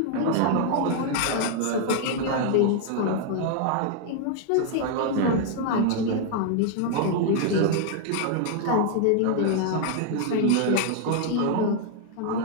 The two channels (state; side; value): different; both; correlation 0.00